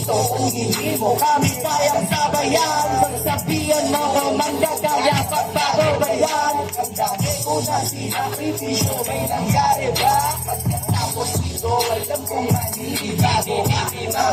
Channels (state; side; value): identical; both; correlation 1.00